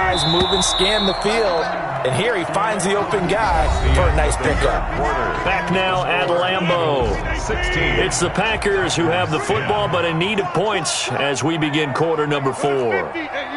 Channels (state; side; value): identical; both; correlation 1.00